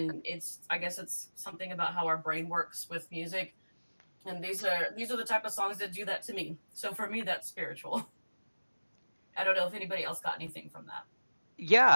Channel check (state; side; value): inverted; both; correlation -1.00